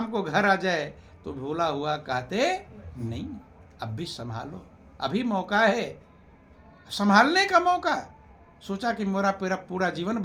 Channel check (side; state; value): both; identical; correlation 1.00